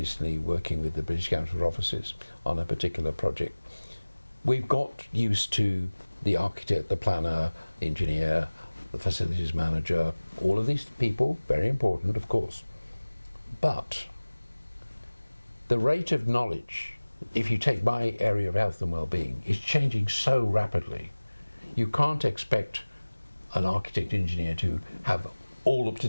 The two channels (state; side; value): inverted; both; correlation -1.00